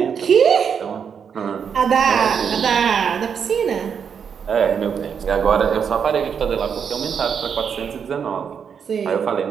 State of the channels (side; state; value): left; quieter; 7.1 dB